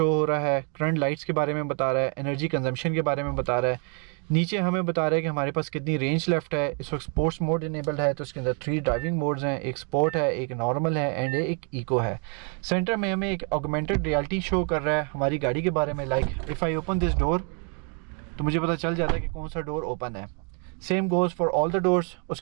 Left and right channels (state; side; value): quieter; left; 39.1 dB